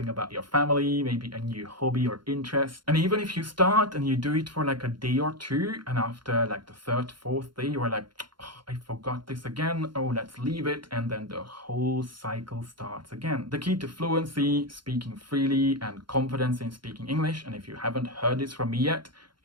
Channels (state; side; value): late; left; 0.72 ms